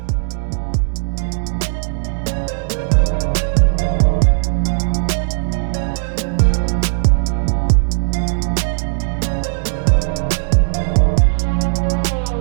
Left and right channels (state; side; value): silent; left; digital silence